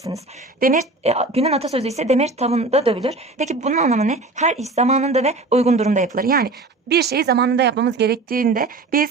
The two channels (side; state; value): left; quieter; 3.3 dB